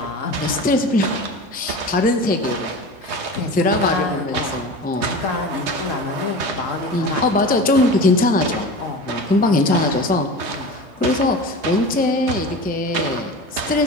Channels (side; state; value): both; normal; correlation 0.32